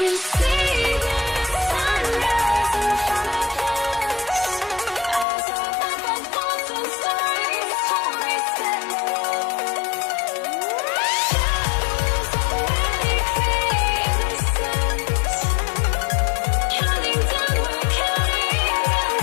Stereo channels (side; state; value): right; drops out; at 5.2 s